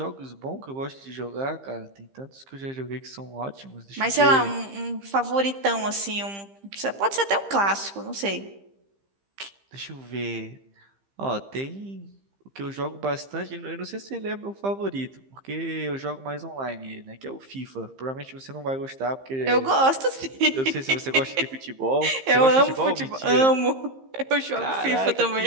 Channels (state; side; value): late; left; 15 ms